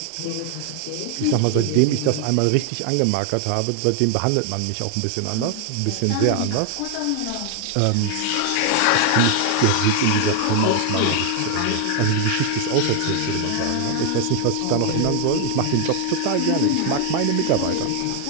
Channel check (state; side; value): different; both; correlation 0.00